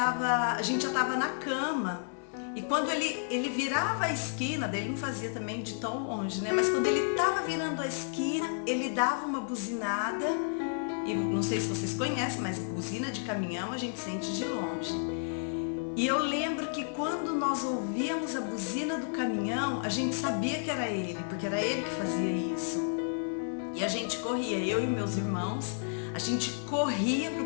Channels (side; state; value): right; silent; 57 dB below the other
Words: estava na cama. E quando ele virava a esquina, daí ele não fazia também de tão longe, né? Mas quando ele estava virando a esquina, ele dava uma buzinada. E não sei se vocês conhecem, mas buzina de caminhão a gente sente de longe. E eu lembro que quando nós ouvíamos a buzina do caminhão, a gente sabia que era ele, porque era ele que fazia isso. E a gente corria, eu e meus irmãos, a gente corria para